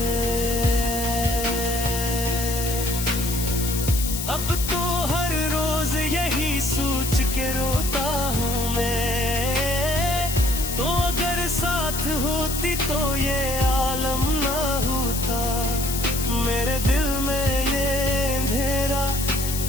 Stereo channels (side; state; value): left; noise; hiss, 5 dB below the sound